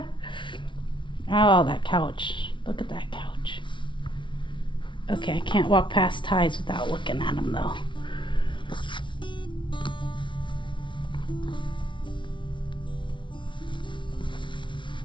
that couch. Look at that couch. Okay, I can't walk past ties without looking at them though.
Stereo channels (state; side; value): late; right; 0.24 ms